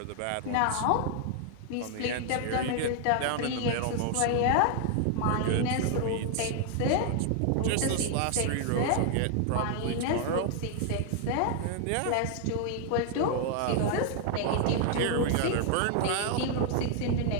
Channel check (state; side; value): different; both; correlation 0.00